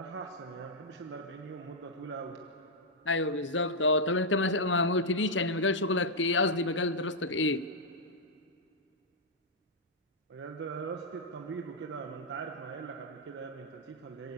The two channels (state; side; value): normal; both; correlation -0.06